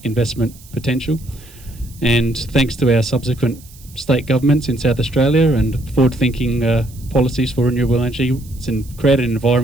investment potential. And thanks to our subsequent state governments in South Australia and forward-thinking policies for renewable energy, it's created an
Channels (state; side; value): noise; right; hiss, 23 dB below the sound